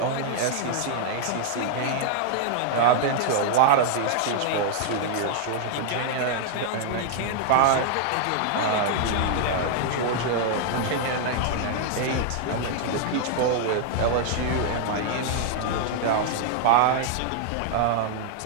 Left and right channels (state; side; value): different; both; correlation 0.00